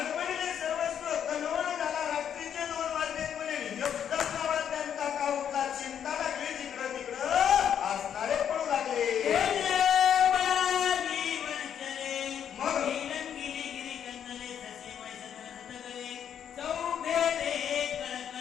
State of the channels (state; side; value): quieter; right; 8.8 dB